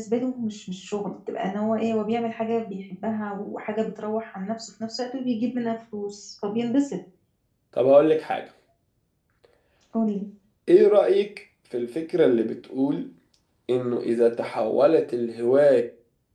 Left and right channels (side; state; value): both; identical; correlation 1.00